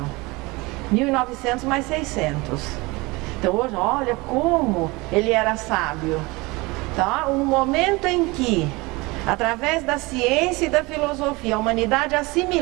1900 mais 600. Então hoje, olha como ele era sábio. Então, no momento em que, através da ciência e da filosofia, a humanidade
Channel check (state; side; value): quieter; left; 23.8 dB